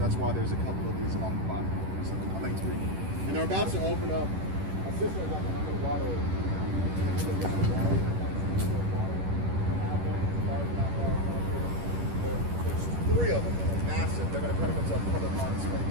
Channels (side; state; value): left; late; 11 ms